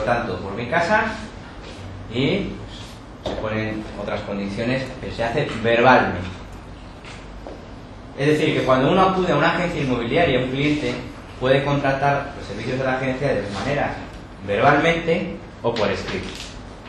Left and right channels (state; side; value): identical; both; correlation 1.00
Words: por mi casa y pues, se ponen otras condiciones, pero se hace verbalmente. Es decir, que cuando uno acude a una agencia inmobiliaria, un cliente puede contratar los servicios de la agencia de dos maneras: verbalmente o por escrito.